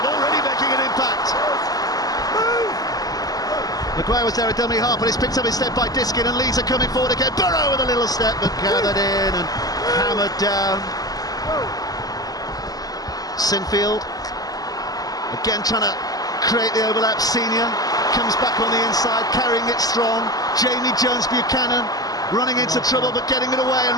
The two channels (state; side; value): late; right; 0.18 ms